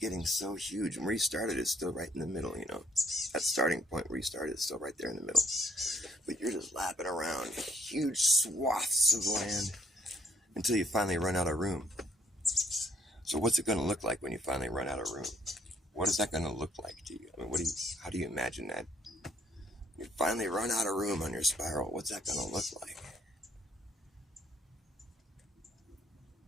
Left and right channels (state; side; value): normal; both; correlation 0.65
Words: getting so huge. And where you started is still right in the middle, you know. That starting point where you started is still right there in the middle. But you're just lapping around huge swaths of land until you finally run out of room. So what's it going to look like when you finally run out of room? What is that going to look like to you? I mean, how do you imagine that? You finally run out of room on your spiral. What's that going to look like?